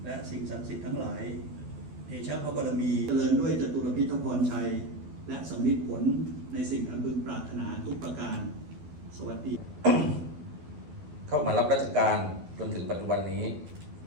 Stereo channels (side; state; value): left; late; 12 ms